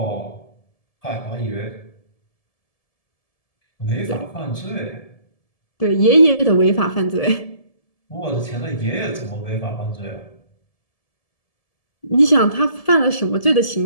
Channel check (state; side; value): late; right; 1.7 ms